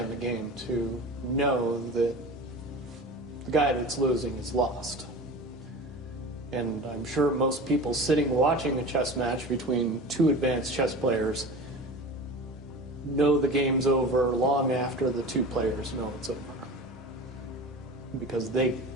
the game to know that the guy that's losing is lost. And I'm sure most people sitting watching a chess match between two advanced chess players know the game's over long after the two players know it's over, because they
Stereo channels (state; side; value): normal; both; correlation 0.34